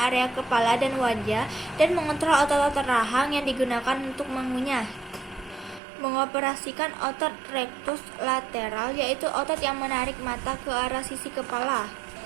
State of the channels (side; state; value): left; drops out; at 5.8 s